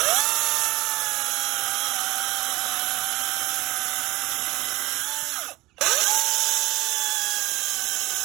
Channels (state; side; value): quieter; left; 19.7 dB